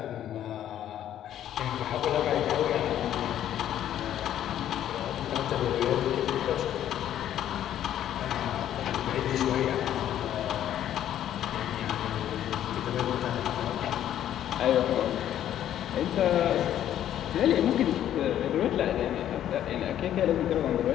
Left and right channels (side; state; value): right; quieter; 11.2 dB